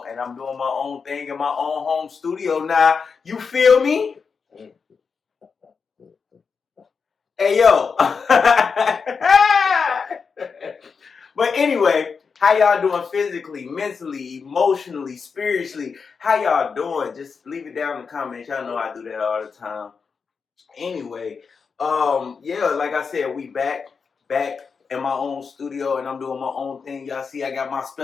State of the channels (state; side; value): quieter; right; 5.5 dB